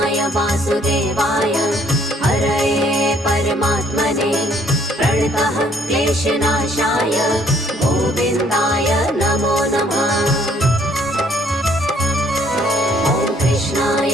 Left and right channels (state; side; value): normal; both; correlation 0.63